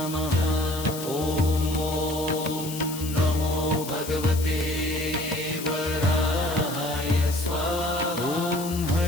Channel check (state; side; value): noise; left; hiss, 10 dB below the sound